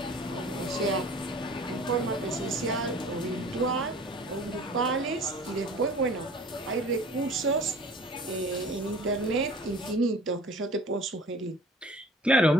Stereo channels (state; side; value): normal; both; correlation 0.46